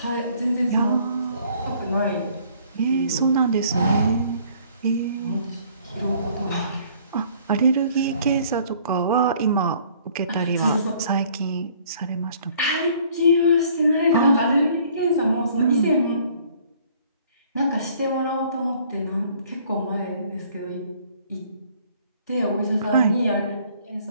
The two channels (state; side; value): inverted; both; correlation -0.58